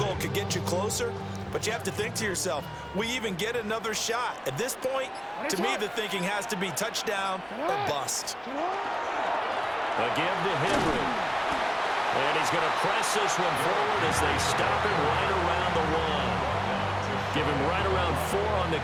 could get you closer, but you have to think to yourself, we even get another shot. At this point, to me, the thinking has to be touchdown or bust. A give to Henry. And he's going to press this one forward as they stop him right around the 1. Give him right around 4 on the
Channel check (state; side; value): identical; both; correlation 1.00